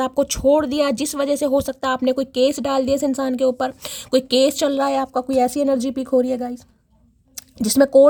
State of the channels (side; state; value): both; identical; correlation 1.00